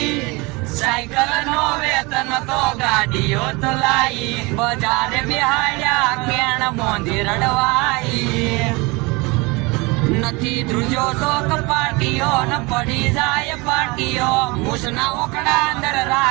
સાયકલ નો વેતન તો ગાડીઓ તો લાઈ બજારે બિહાડ્યા કેણ બોંધી રડવાઈ. નથી ધ્રુજો તો કપાટીઓ ન પડી જાય પાટીઓ મૂસના ઓકડા અંદર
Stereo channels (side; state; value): left; quieter; 25.7 dB